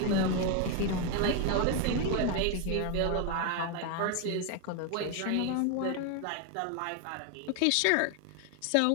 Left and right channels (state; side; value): different; both; correlation 0.01